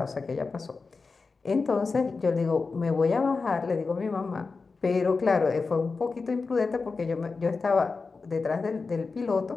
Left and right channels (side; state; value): right; quieter; 4.3 dB